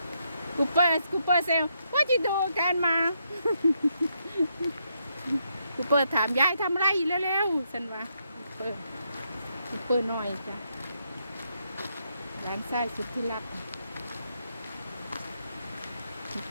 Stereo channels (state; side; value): inverted; both; correlation -0.78